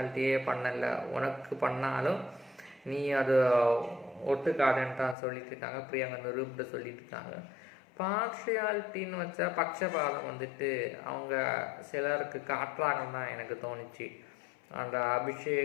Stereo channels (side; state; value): right; drops out; at 5.2 s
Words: பண்ணலை, உனக்கு பண்ணாலும் நீ அது ஒட்டுக்காதுன்னு தான் சொல்லிட்டு இருக்காங்க. பிரியங்கா அந்த ரூப்ட சொல்லிட்டு இருக்காங்க. பார்ஷியாலிட்டின்னு வச்சா பட்சபாதம் வந்துட்டு அவங்க சிலருக்கு காட்டுறாங்கன்னு தான் எனக்கு தோணுச்சு. அந்த